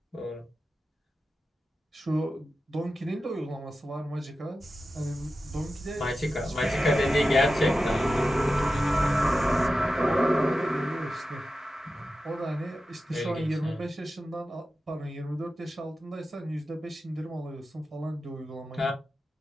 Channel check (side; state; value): both; normal; correlation 0.92